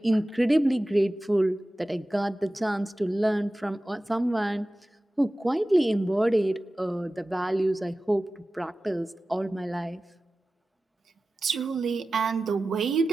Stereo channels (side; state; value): both; normal; correlation 0.95